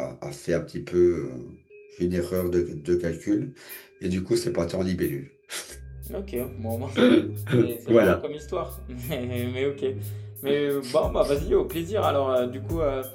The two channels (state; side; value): identical; both; correlation 1.00